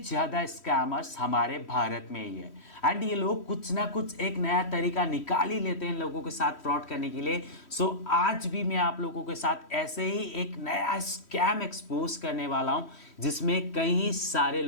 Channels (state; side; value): late; right; 3.1 ms